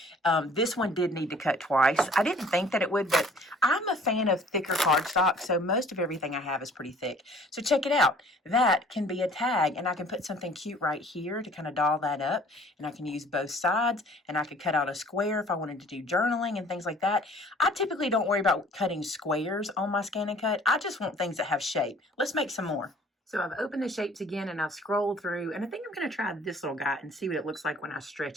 this one did need to cut twice. I didn't think that it would, but I'm a fan of thicker cardstock, so most of everything I have is pretty thick. So check it out. That can be a tag, and I can put something cute right here to kind of doll that up, and I can use both sides, and I could cut out a square if I wanted to do journaling and things like that. I typically don't worry about cutting squares on my scan and cut. I just want things that have shape. Let's make some more. So I've opened the shapes again and I've scrolled through, and I think I'm going to try this little guy and see what it looks like when I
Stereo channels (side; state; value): both; normal; correlation 0.53